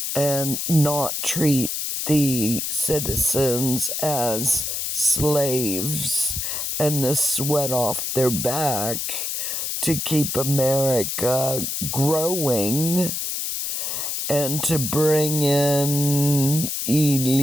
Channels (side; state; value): left; noise; hiss, 2 dB below the sound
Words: and not treat the citizens as slaves and the sweat off their back to keep America growing and to bring in